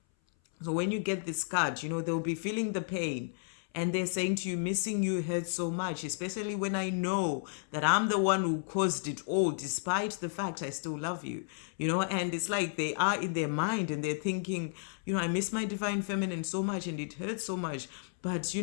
So when you get this card, they'll be feeling the pain And they're saying to you, missing you hurts so much, especially when I know that I'm the one who caused it all, despite the fact I still love you. And it's like they are in their mind and they're thinking, I miss my divine feminine so much and it hurts so much. But,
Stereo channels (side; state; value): right; silent; 56 dB below the other